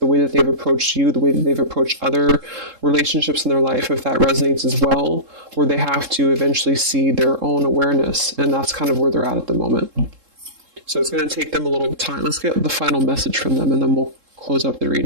way that they've approached you, the way that they've approached other relationships in their life, if that resonates as well, where they have to eventually see their own awareness, and that's kind of where they're at the moment. So it's going to take them a little time. Let's get the final message from them, and then we'll close up the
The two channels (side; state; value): left; late; 3.7 ms